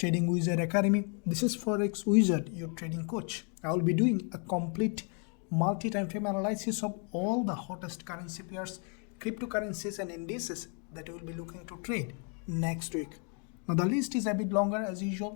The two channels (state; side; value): quieter; right; 39.2 dB